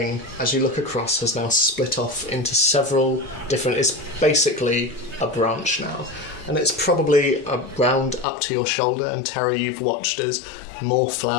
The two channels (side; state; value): right; drops out; at 8.2 s